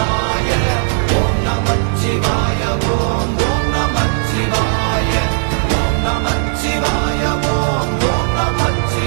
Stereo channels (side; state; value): left; silent; digital silence